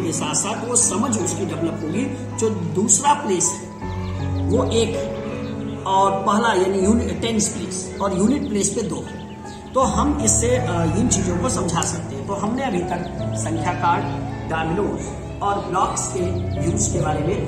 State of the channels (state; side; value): identical; both; correlation 1.00